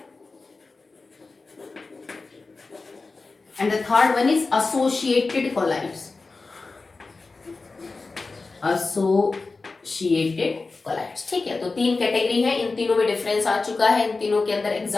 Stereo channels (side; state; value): right; quieter; 3.8 dB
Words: and the third one is associated colloids. ठीक है, तो तीन कैटेगरी है, इन तीनों में डिफरेंस आ चुका है, इन तीनों के अंदर